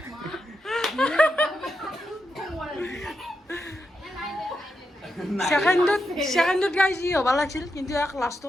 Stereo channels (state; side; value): normal; both; correlation 0.86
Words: সেকেন্ডত গাইছ ই হ'ব লাগিছিল কিন্তু এক